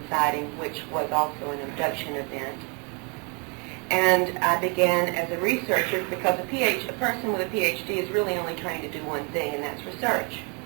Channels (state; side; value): quieter; left; 34.2 dB